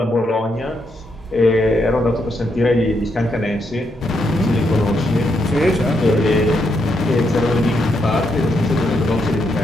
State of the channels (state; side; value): normal; both; correlation 0.79